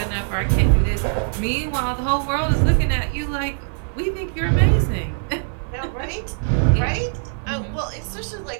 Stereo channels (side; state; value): left; silent; digital silence